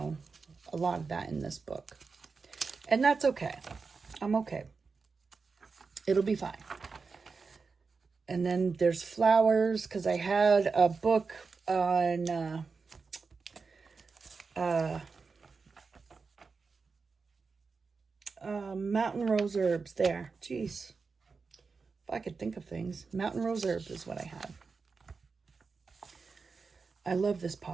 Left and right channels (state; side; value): quieter; left; 4.7 dB